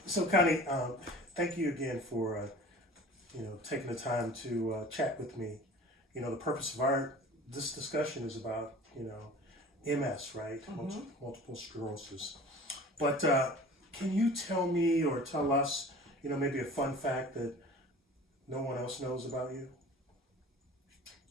so Connie, thank you again for taking the time to chat with me. The purpose of this discussion is about MS, right? Mm-hmm. Multiple sclerosis. But can you tell me or tell us, maybe a fun fact that no one else knows about you?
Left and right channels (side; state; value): both; normal; correlation 0.42